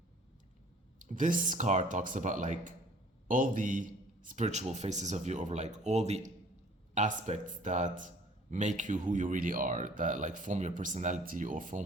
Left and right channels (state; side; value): normal; both; correlation 0.53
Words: this card talks about like all the spiritual faces of you, over like all the aspects that make you who you really are, that like form your personality or form